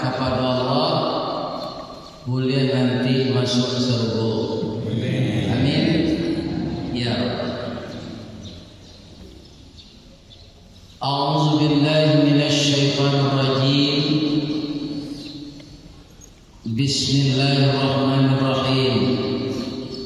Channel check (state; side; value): identical; both; correlation 1.00